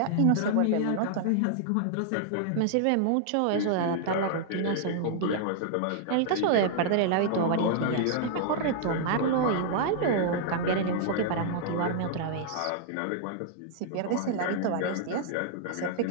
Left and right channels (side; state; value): both; different; correlation -0.01